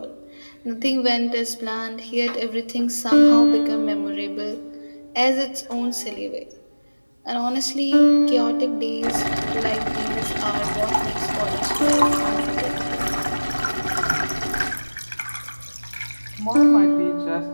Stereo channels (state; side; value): inverted; both; correlation -1.00